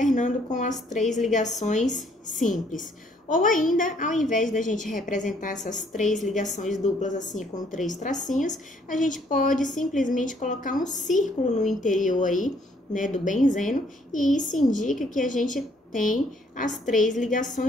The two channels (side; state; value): both; normal; correlation 0.65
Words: com as 3 ligações simples. Ou ainda, ao invés da gente representar essas 3 ligações duplas assim com 3 tracinhos, a gente pode simplesmente colocar um círculo no interior aí, né, do benzeno, e isso indica que a gente tem as 3